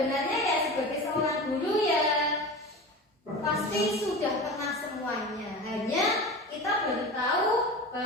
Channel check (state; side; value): normal; both; correlation 0.31